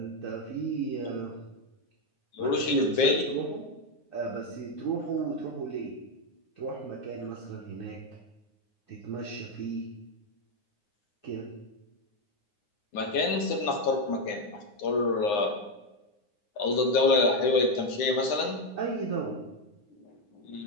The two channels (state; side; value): late; right; 9.7 ms